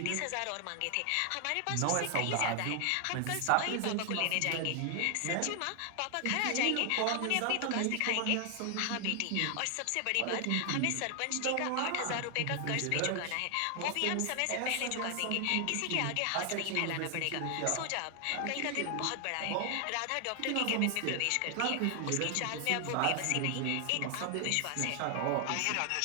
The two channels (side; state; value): both; different; correlation 0.00